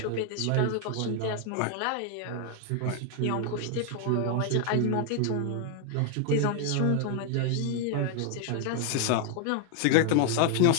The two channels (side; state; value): both; different; correlation 0.00